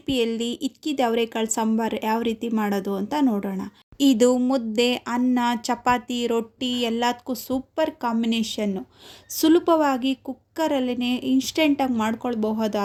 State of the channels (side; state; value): both; identical; correlation 1.00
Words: ಇಕ್ಕಿದ ಅವರೆಕಾಳು ಸಾಂಬಾರು ಯಾವ ರೀತಿ ಮಾಡೋದು ಅಂತ ನೋಡೋಣ. ಇದು ಮುದ್ದೆ, ಅನ್ನ, ಚಪಾತಿ, ರೊಟ್ಟಿ ಎಲ್ಲದಕ್ಕೂ ಸೂಪರ್ ಕಾಂಬಿನೇಷನ್ನು. ಸುಲಭವಾಗಿ ಕುಕ್ಕರಲ್ಲೇ ಇನ್ಸ್ಟೆಂಟಾಗಿ